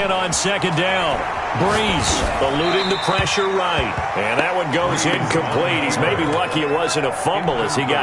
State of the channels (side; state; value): both; identical; correlation 1.00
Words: on 2nd down. Brees eluding the pressure right. And that one goes incomplete. He's maybe lucky it wasn't a fumble as he